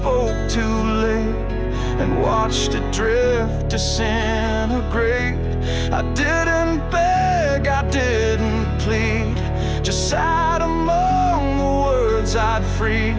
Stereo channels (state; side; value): identical; both; correlation 1.00